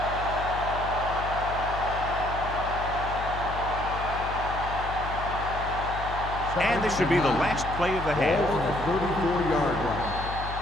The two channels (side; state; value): left; noise; hum, 7 dB below the sound